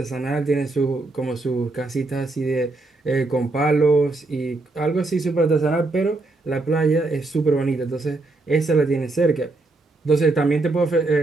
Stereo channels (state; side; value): quieter; left; 3.2 dB